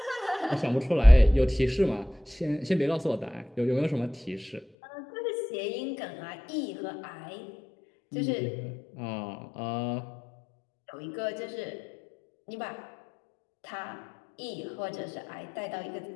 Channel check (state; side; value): drops out; right; at 4.7 s